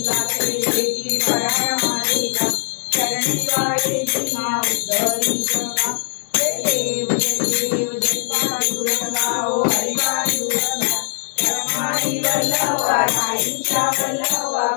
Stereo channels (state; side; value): silent; right; 63 dB below the other